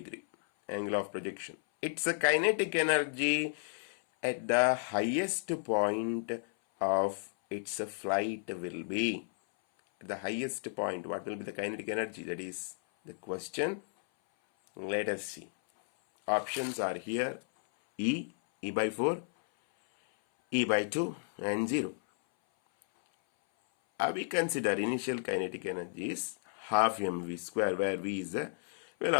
Angle of projection. Its kinetic energy at the highest point of its flight will be. At the highest point, what will be the kinetic energy? That is the question. Let us see. Options are here. E by 4, E by 2 and 0. We consider initial kinetic energy is half mv square, where v is the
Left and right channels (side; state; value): right; silent; 56 dB below the other